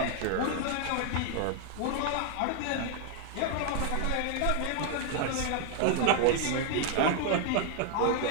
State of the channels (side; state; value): both; different; correlation 0.00